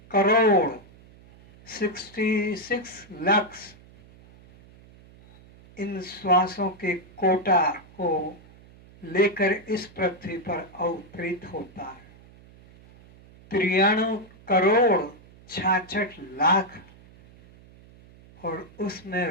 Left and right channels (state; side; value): noise; right; hum, 24 dB below the sound